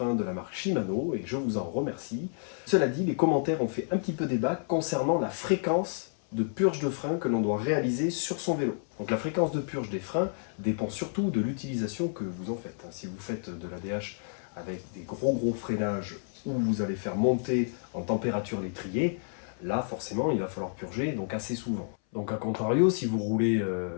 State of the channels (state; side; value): silent; right; 58 dB below the other